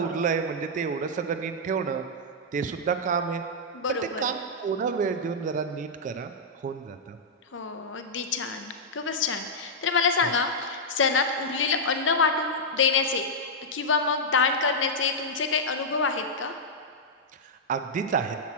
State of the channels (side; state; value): both; normal; correlation -0.07